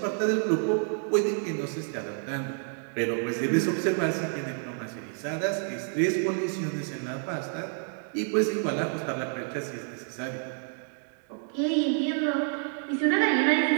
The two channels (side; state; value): left; silent; 59 dB below the other